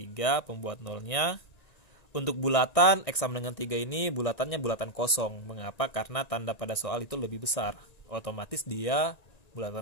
pembuat nolnya. Untuk bulatan, X sama dengan 3 ini bulatannya bulatan kosong. Mengapa? Karena tanda pada soal itu lebih besar. Otomatis dia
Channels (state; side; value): late; right; 1.9 ms